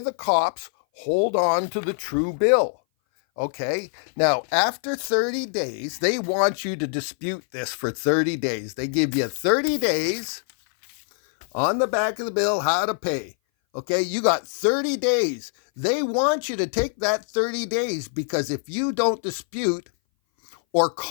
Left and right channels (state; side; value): silent; right; 59 dB below the other